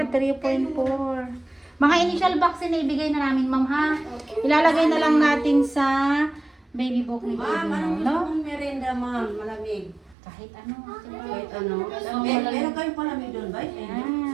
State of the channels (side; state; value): left; drops out; at 10.2 s